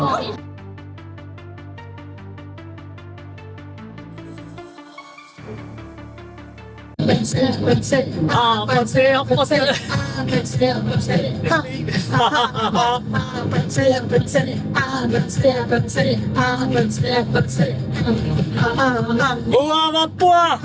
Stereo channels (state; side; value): identical; both; correlation 1.00